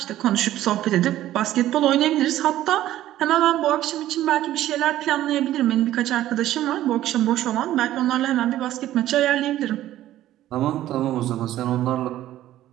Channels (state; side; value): quieter; left; 13.6 dB